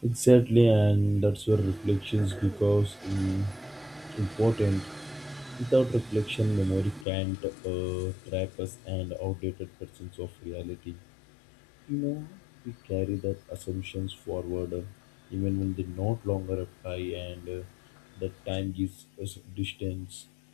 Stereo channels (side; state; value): right; drops out; at 7.1 s